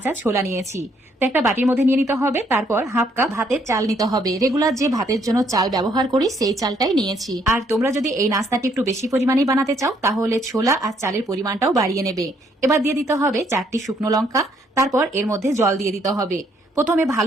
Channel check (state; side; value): normal; both; correlation 0.69